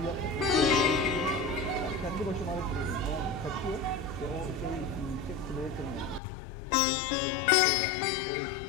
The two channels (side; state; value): right; drops out; at 6.2 s